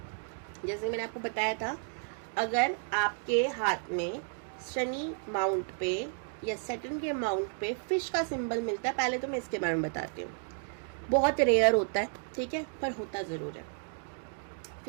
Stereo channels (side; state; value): left; silent; 56 dB below the other